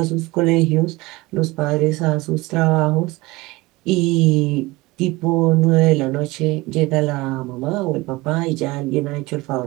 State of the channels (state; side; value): quieter; left; 21.6 dB